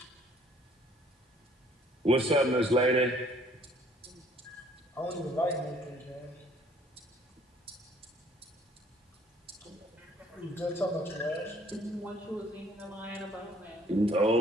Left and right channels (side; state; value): both; normal; correlation 0.59